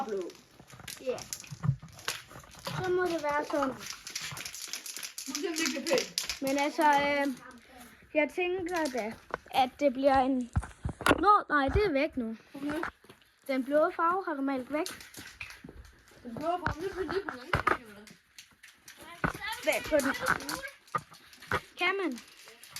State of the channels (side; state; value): both; identical; correlation 1.00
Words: blå. Ja. Så må det være sådan. Nu ser det ikke pænt. Men altså, jeg tænker da, at det bliver en... Nej, det er væk nu. Okay. Den blå farve har du malet væk. Den blå farve, det er på den anden. Væk på den. Kan man?